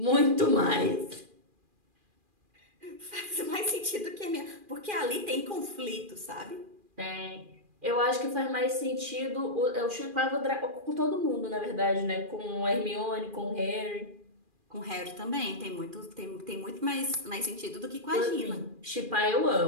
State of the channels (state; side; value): late; left; 2.4 ms